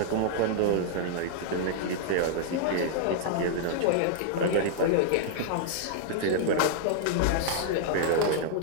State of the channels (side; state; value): both; different; correlation -0.01